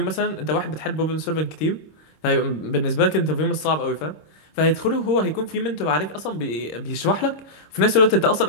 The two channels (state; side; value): late; right; 26 ms